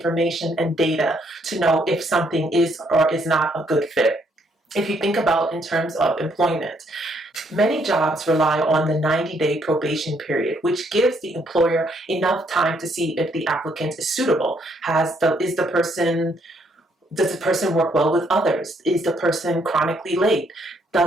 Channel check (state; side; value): normal; both; correlation 0.70